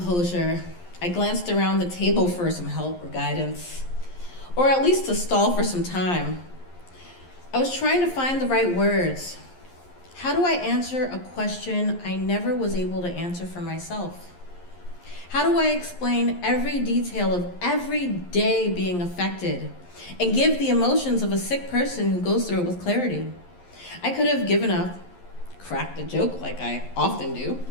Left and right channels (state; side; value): late; right; 11 ms